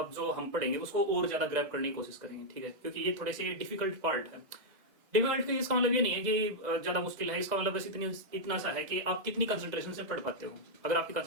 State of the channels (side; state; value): left; late; 2.0 ms